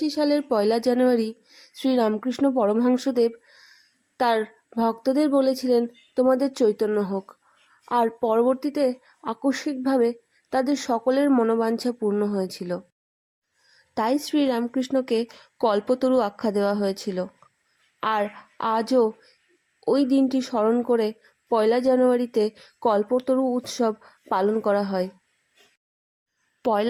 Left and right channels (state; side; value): identical; both; correlation 1.00